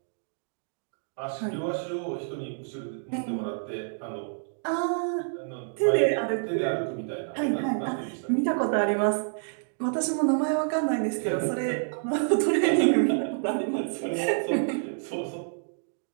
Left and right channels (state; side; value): silent; left; digital silence